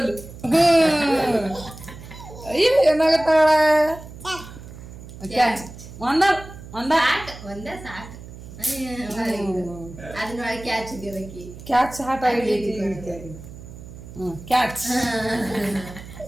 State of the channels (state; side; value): noise; right; hum, 15 dB below the sound